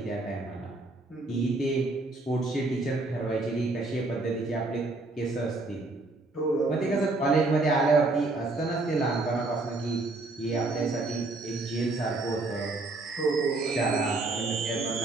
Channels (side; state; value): left; quieter; 3.2 dB